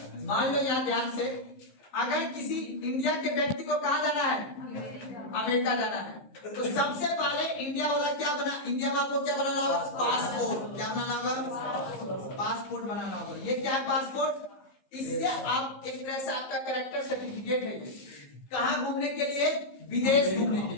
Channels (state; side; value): late; right; 15 ms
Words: मान लो यहाँ ध्यान से, अगर किसी इंडिया के व्यक्ति को कहाँ जाना है, अमेरिका जाना है, तो सबसे पहले इंडिया वाला क्या बना, इंडिया वाला को क्या बनाना होगा, पासपोर्ट, क्या बनाना होगा, पासपोर्ट बनाना होगा। ये क्या है, पासपोर्ट, इससे आप एक तरह से आपका कैरेक्टर सर्टिफिकेट है, कहाँ घूमने के लिए, विदेश घूमने के